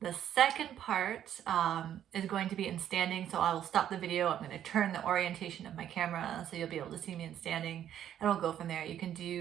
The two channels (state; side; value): quieter; left; 10.5 dB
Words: The second part is going to be in standing, so I will stop the video. I'm going to turn the orientation of my camera so you'll be able to see me in standing, and we'll go from there. You can